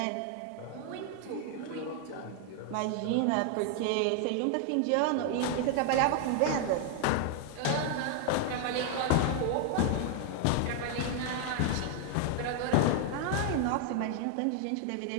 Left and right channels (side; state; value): both; different; correlation 0.00